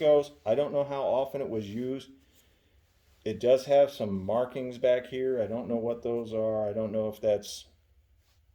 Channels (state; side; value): identical; both; correlation 1.00